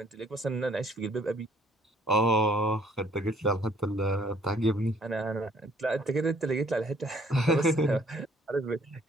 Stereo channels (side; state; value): both; normal; correlation 0.61